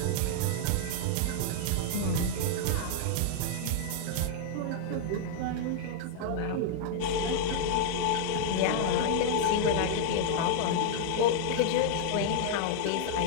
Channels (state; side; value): different; both; correlation 0.00